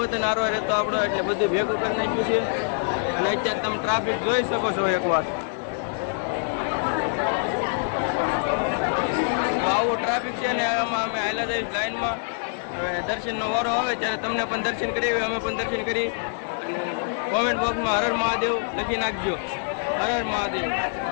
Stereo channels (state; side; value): silent; right; digital silence